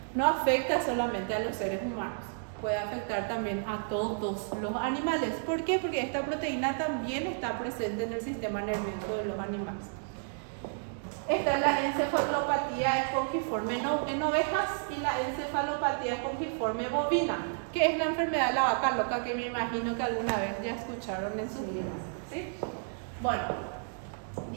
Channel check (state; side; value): silent; left; digital silence